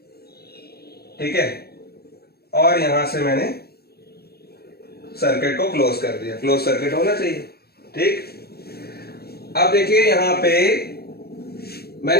ठीक है। और यहां से मैंने सर्किट को क्लोज कर दिया, क्लोज सर्किट होना चाहिए, ठीक। अब देखिए यहां पे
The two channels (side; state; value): right; late; 0.46 ms